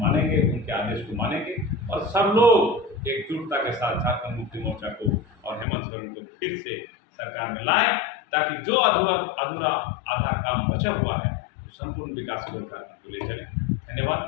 उनके आदेश को मानेंगे, और सब लोग एकजुटता के साथ झारखंड मुक्ति मोर्चा को और हेमंत सोरेन को फिर से सरकार में लाएं, ताकि जो अधूरा आधा काम बचा हुआ है संपूर्ण विकास को ले चले। धन्यवाद,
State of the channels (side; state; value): right; drops out; at 5.7 s